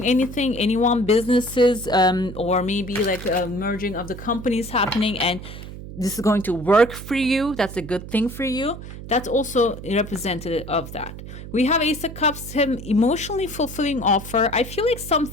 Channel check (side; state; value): right; noise; hum, 12 dB below the sound